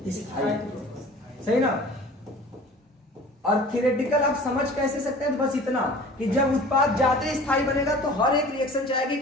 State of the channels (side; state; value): both; normal; correlation 0.44